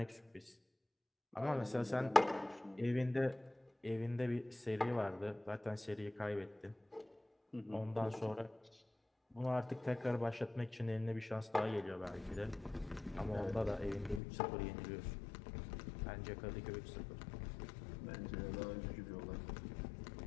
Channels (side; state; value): right; drops out; at 14.2 s